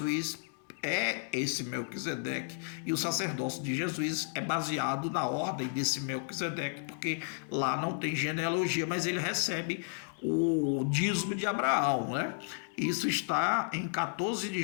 é esse Melquisedeque, e o sacerdócio de Jesus é baseado na ordem desse Melquisedeque, porque lá não tem genealogia, mas ele recebe o dízimo de Abraão, né? Isso está em 14 de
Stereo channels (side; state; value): right; silent; 56 dB below the other